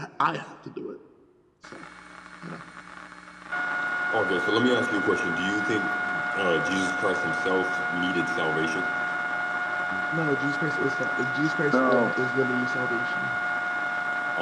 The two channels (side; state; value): both; identical; correlation 1.00